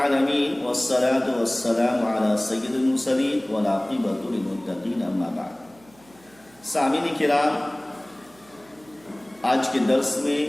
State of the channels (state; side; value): noise; right; hum, 28 dB below the sound